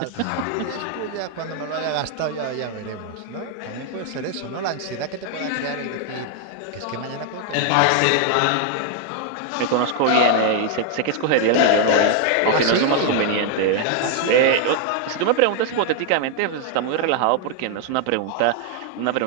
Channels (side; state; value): both; different; correlation 0.00